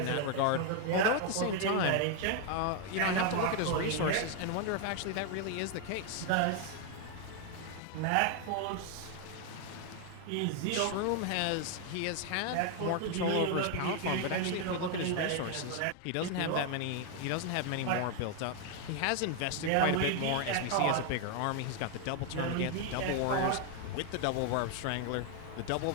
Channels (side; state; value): both; different; correlation 0.01